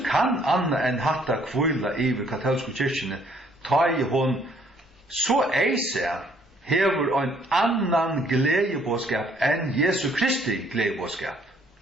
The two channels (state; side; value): normal; both; correlation 0.64